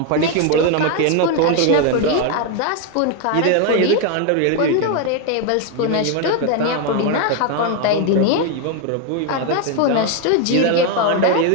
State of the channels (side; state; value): both; different; correlation 0.01